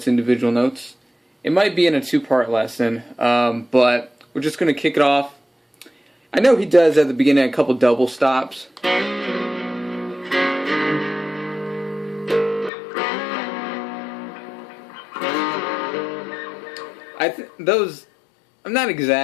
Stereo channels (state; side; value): drops out; right; at 12.7 s